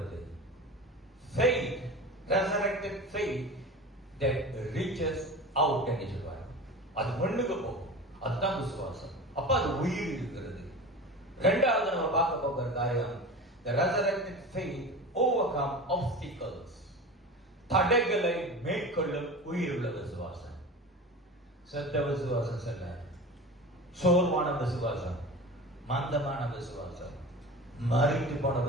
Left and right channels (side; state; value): both; normal; correlation 0.33